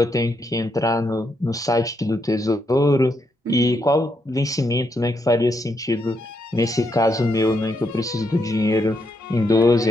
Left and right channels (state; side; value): normal; both; correlation 0.79